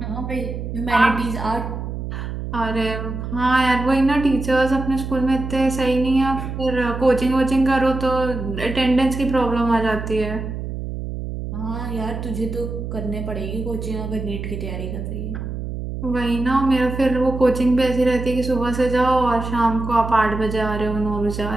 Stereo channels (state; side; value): noise; right; hum, 6 dB below the sound